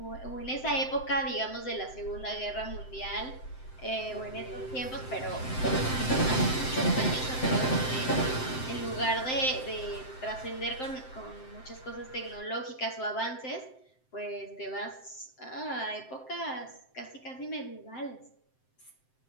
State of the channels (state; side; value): late; right; 7.7 ms